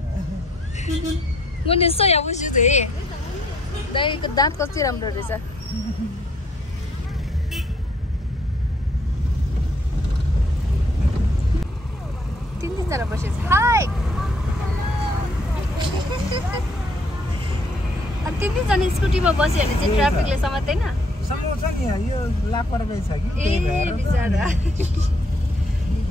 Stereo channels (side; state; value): both; normal; correlation 0.67